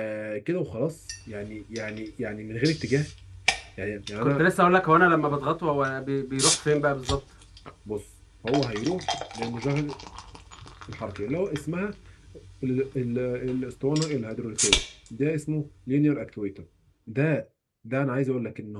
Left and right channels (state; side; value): identical; both; correlation 1.00